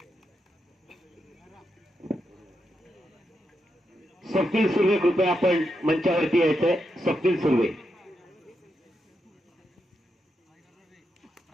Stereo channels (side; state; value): both; normal; correlation 0.84